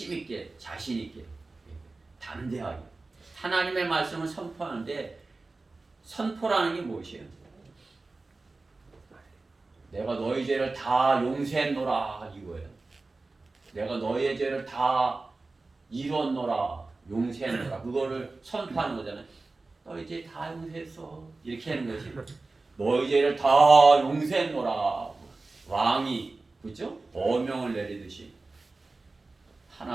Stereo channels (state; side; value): quieter; left; 3.5 dB